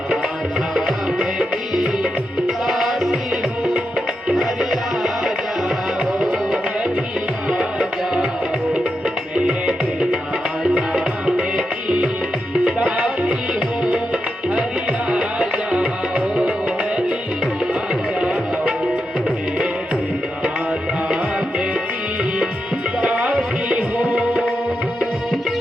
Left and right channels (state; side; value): normal; both; correlation 0.86